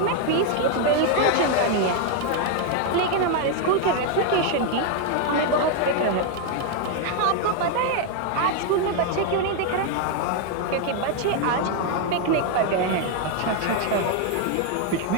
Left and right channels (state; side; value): different; both; correlation 0.01